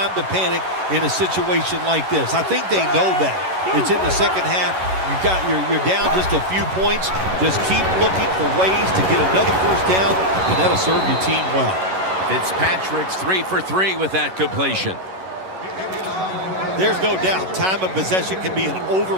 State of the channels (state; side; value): late; left; 11 ms